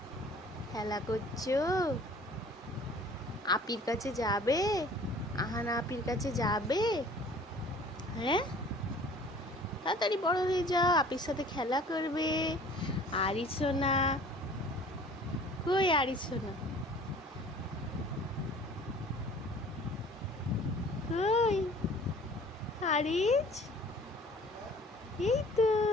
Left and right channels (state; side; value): normal; both; correlation 0.49